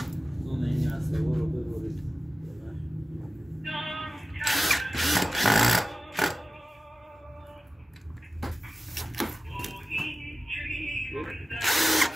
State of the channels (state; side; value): normal; both; correlation 0.96